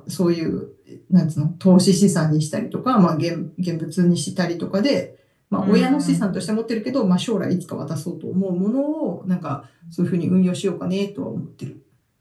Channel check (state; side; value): identical; both; correlation 1.00